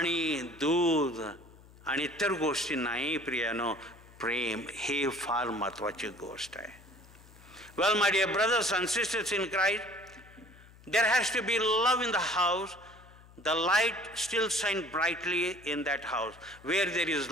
दूध आणि इतर गोष्टी नाही प्रियानो, प्रेम हे फार महत्त्वाची गोष्ट आहे. Well, my dear brothers and sisters in Christ, there has to be love in the house. The light still shines brightly in that house. Where there is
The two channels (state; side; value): noise; left; hum, 23 dB below the sound